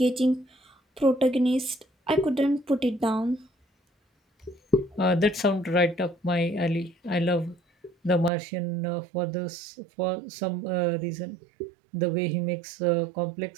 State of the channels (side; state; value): left; drops out; at 8.3 s